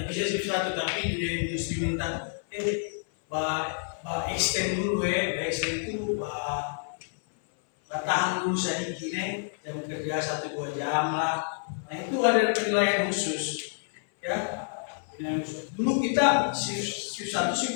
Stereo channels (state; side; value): silent; right; 59 dB below the other